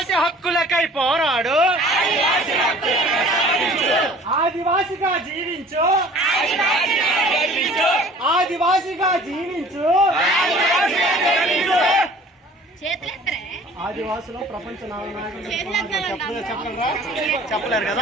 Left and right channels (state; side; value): normal; both; correlation 0.49